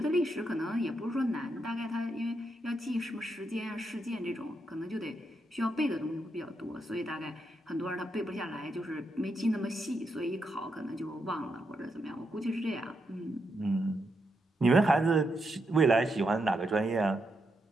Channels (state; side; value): normal; both; correlation 0.82